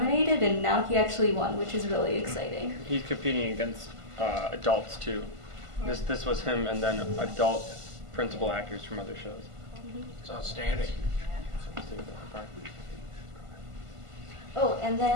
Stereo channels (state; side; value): late; left; 1.5 ms